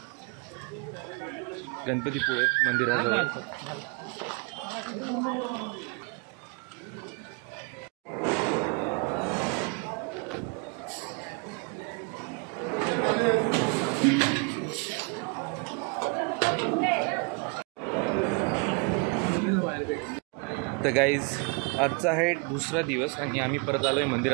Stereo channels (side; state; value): left; quieter; 32.9 dB